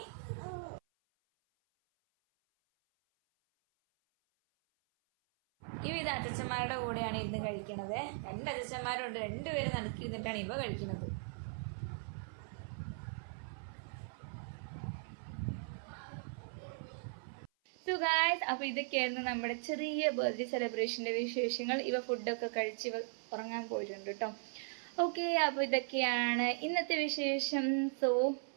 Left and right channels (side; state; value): left; silent; 52 dB below the other